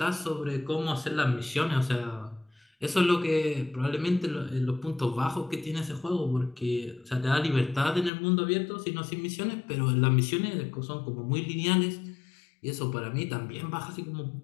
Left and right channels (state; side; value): drops out; right; at 8.1 s